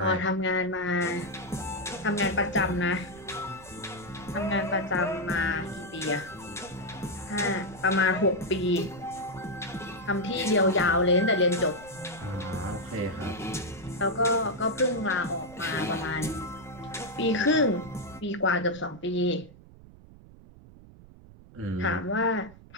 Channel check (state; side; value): noise; right; rumble, 21 dB below the sound